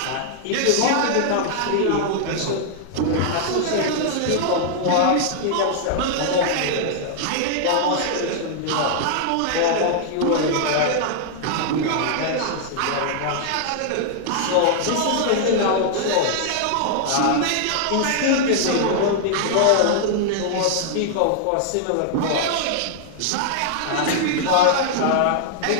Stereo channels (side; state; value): both; different; correlation -0.01